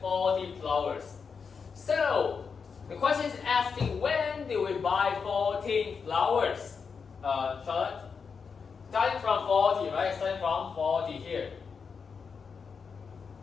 flowers. So, the question is asking when did we buy 14 flowers? Charlotte? Starting from 40, right? Starting from 40 here.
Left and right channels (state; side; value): quieter; right; 5.7 dB